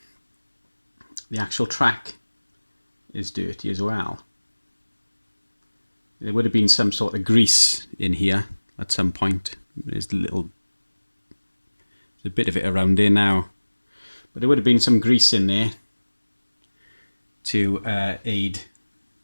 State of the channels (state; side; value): inverted; both; correlation -1.00